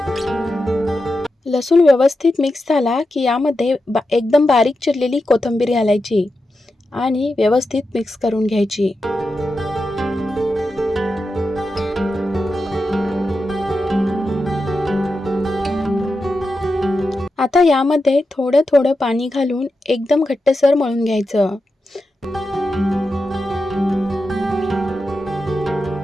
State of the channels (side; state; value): both; normal; correlation 0.89